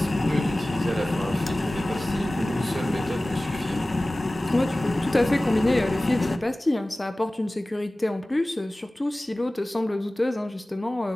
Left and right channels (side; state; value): both; normal; correlation 0.98